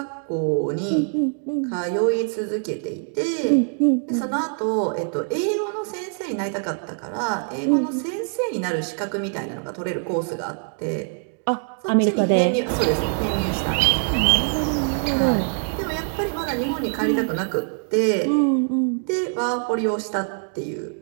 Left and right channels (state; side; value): silent; left; 63 dB below the other